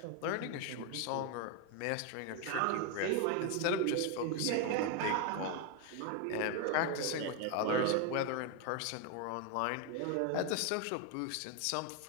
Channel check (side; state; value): both; different; correlation 0.01